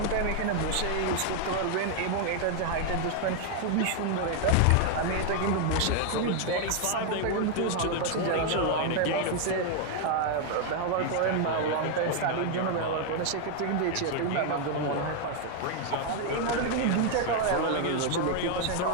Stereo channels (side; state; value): both; different; correlation 0.00